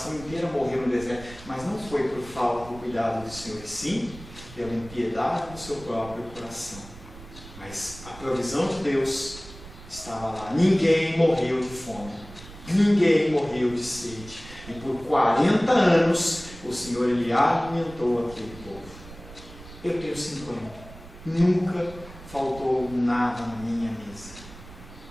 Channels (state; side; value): noise; right; rumble, 17 dB below the sound